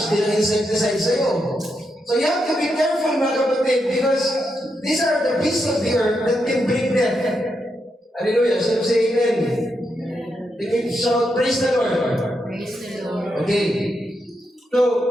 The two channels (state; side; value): normal; both; correlation 0.83